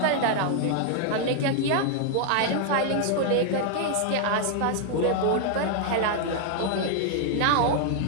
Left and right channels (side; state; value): both; different; correlation 0.00